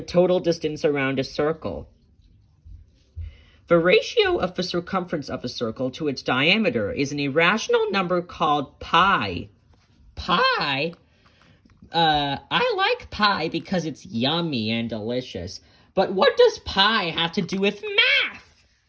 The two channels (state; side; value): identical; both; correlation 1.00